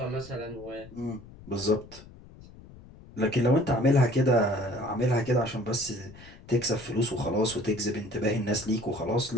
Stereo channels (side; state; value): left; noise; rumble, 19 dB below the sound